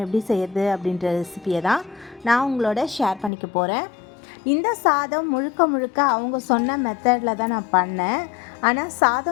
எப்படி செய்யறது அப்படின்ற ரெசிபியை தான் நான் உங்களோட ஷேர் பண்ணிக்க போகிறேன். இந்த சாதம் முழுக்க அவங்க சொன்ன மெத்தடில் தான் நான் பண்ணேன். ஆனால்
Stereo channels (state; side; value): drops out; right; at 3.3 s